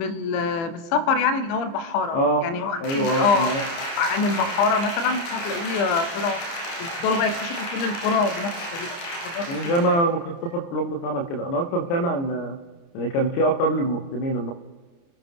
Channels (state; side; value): late; right; 29 ms